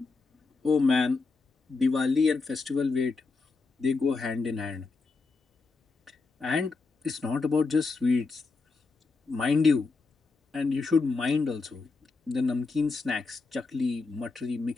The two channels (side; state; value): right; quieter; 4.1 dB